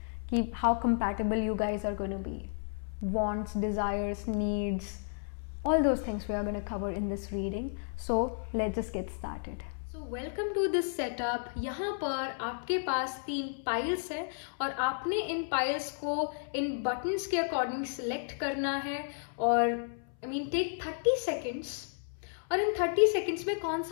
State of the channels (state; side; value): silent; right; 56 dB below the other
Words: कि how compatible you guys are going to be. Wants, desires, needs, all those things we are going to cover in this reading. So let's just get started. So welcome to this setup. यहाँ पर आपके पास 3 piles है और आपने इन piles को इन buttons के according select करना है और टेक 30 सेकेंड्स और इन 30 सेकेंड्स में कौन